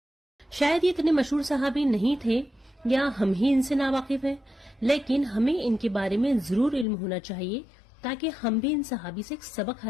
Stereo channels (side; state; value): right; drops out; at 6.9 s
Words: شاید یہ اتنے مشہور صحابی نہیں تھے یا ہم ہی ان سے ناواقف ہیں، لیکن ہمیں ان کے بارے میں ضرور علم ہونا چاہیے تاکہ ہم بھی ان صحابی سے ایک سبق